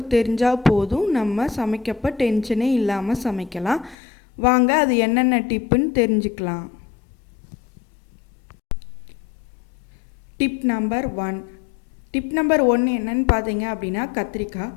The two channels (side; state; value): right; drops out; at 4.0 s